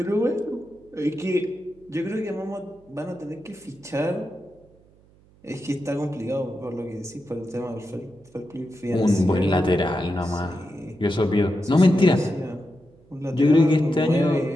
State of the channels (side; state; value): right; noise; hum, 29 dB below the sound